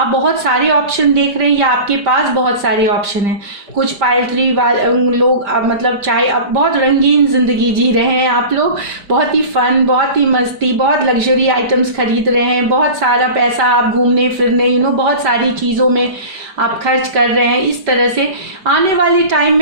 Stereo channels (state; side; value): late; left; 5.1 ms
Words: बहुत सारे ऑप्शन देख रहे हैं या आपके पास बहुत सारे ऑप्शन हैं। कुछ पाइल 3 लोग मतलब चाहे अब बहुत रंगीन ज़िंदगी जी रहे हैं, आप लोग बहुत ही फन, बहुत ही मस्ती, बहुत लग्जरी आइटम्स खरीद रहे हैं, बहुत सारा पैसा आप घूमने फिरने बहुत सारी चीज़ों में आप खर्च कर रहे हैं। इस तरह से आने वाले टाइम